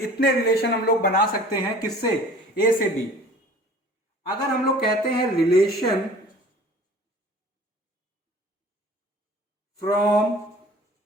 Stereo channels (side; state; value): both; normal; correlation 0.46